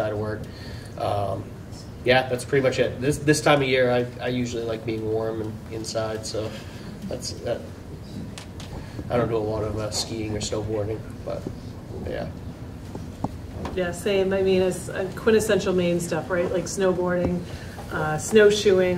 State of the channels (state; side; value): identical; both; correlation 1.00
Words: of work. Yeah, that's pretty much it. This time of year, I usually like being warm and inside. So that's that. I don't do a lot of skiing or snowboarding, but yeah. Yeah, same. I mean, it's quintessential Maine stuff, right? Like snowboarding,